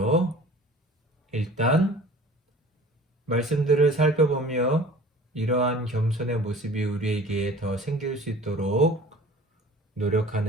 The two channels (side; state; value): both; normal; correlation 0.45